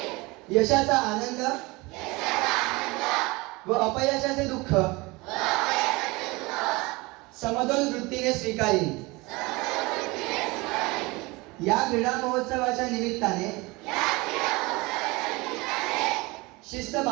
यशाचा आनंद व अपयशाचे दुःख समतोल वृत्तीने स्वीकारीन. या क्रीडा महोत्सवाच्या निमित्ताने शिस्त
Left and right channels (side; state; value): left; quieter; 23.8 dB